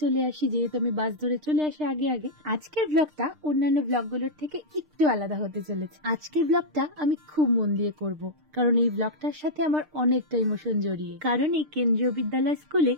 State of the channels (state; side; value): late; left; 6.6 ms